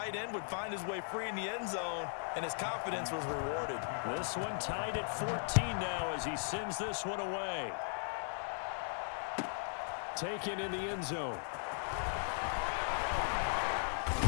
end would find his way free in the end zone, and his confidence was rewarded. This one tied at 14 now as he sends this one away. Taken in the end zone.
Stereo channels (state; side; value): silent; right; digital silence